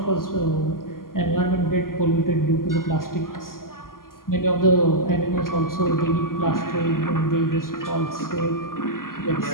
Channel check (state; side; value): late; right; 0.91 ms